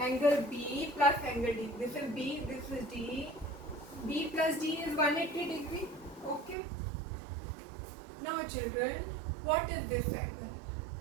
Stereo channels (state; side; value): drops out; left; at 6.6 s